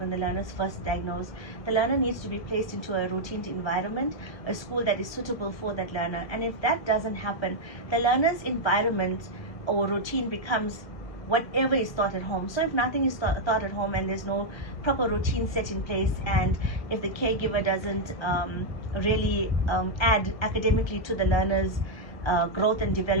the learner is first diagnosed, the learner needs to be placed into a routine environment, a school that is suitable for that learner. And if that doesn't happen, the learner's environment or routine becomes whatever is taught at home. So if nothing is taught at home and there's no proper routine set in place, and if the caregiver doesn't really add academically to the learner's growth and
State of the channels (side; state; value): right; late; 1.5 ms